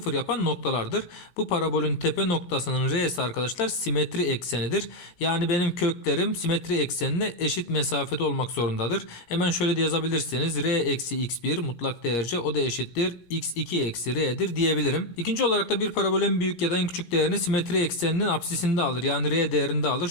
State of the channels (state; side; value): late; right; 17 ms